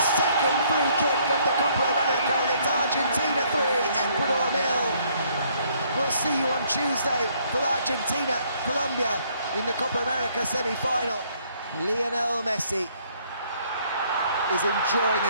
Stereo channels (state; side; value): inverted; both; correlation -0.65